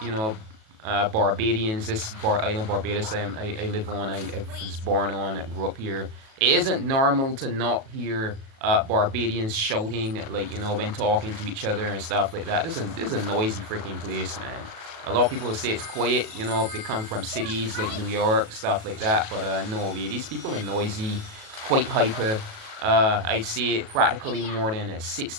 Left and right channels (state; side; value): late; left; 37 ms